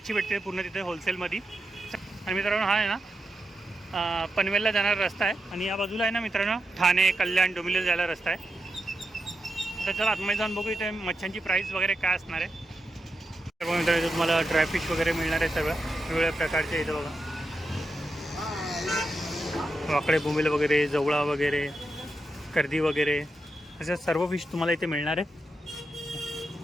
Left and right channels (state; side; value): normal; both; correlation 0.87